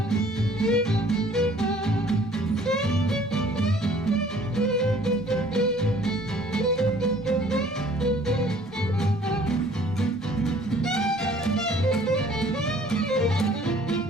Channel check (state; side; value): normal; both; correlation 0.55